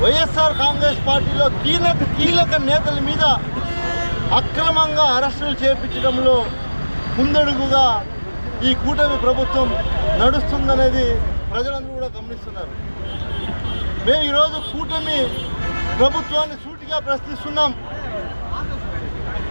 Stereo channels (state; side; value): inverted; both; correlation -1.00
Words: వైఎస్ఆర్ కాంగ్రెస్ పార్టీలో కీలక నేతల మీద అక్రమంగా అరెస్టులు చేపించడంలో ముందడుగుగా ఈ కూటమి ప్రభుత్వం నడుస్తుందనేది ప్రజలందరూ కూడా గమనిస్తున్నారు. మేము ఈరోజు కూటమి ప్రభుత్వాన్ని సూటిగా ప్రశ్నిస్తున్నాం.